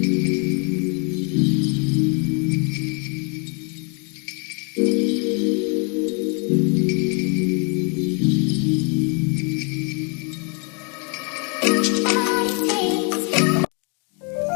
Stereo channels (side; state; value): right; quieter; 35.9 dB